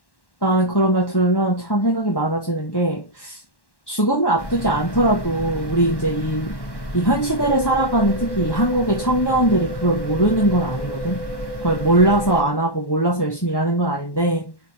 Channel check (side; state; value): right; late; 1.1 ms